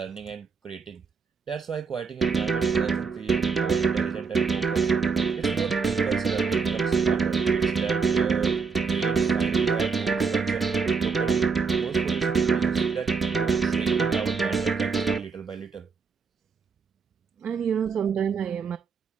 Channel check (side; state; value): left; quieter; 5.4 dB